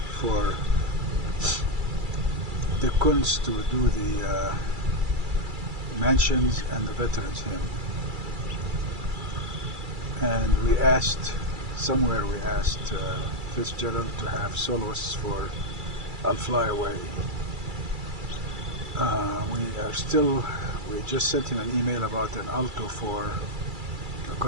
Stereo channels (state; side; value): late; left; 2.3 ms